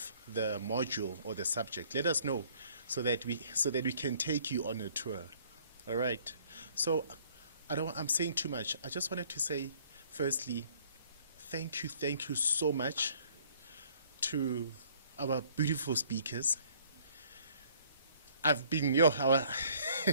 the module or the subject, let us know so that we can take you on a tour. All right. So I'm saying too much. I just wanted to say, firstly, thank you so much to our beautiful speakers. I'm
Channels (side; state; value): both; inverted; correlation -0.59